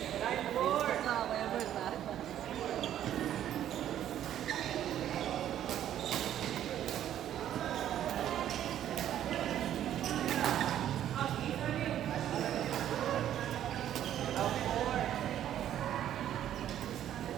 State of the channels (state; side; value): quieter; left; 11.2 dB